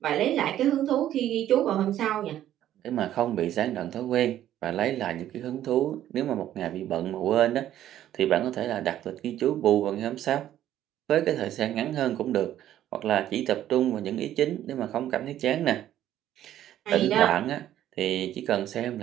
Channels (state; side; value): quieter; left; 12.1 dB